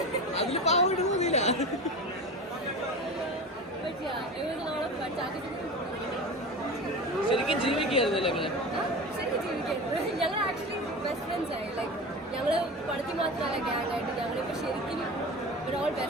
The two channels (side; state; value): both; normal; correlation 0.30